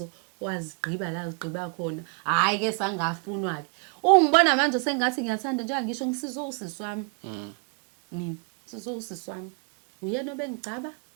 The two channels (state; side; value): quieter; left; 35.9 dB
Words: wazigqiba la zigqiba khona hayi ke sangafunwa ke ungibona manje sengathi ngiyathanda njengoba ngisho ngisizo usisi wami mina sizo usisi wami uyena obengicaba